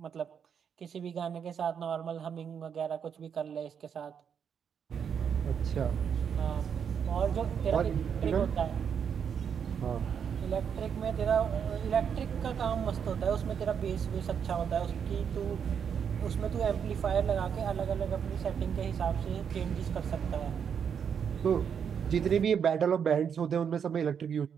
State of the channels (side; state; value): left; quieter; 7.5 dB